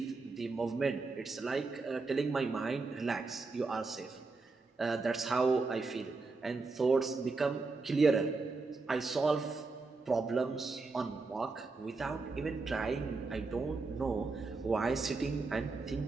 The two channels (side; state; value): left; quieter; 3.9 dB